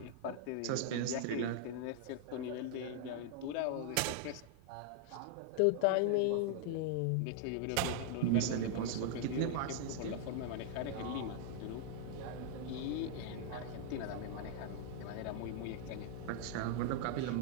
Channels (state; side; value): different; both; correlation 0.00